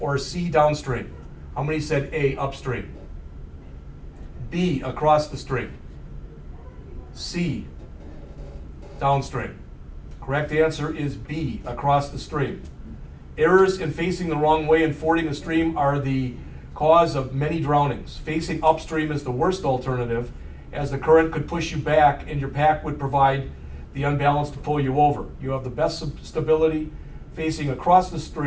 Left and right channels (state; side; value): identical; both; correlation 1.00